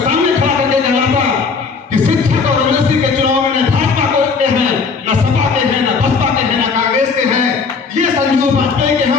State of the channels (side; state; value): right; quieter; 5.1 dB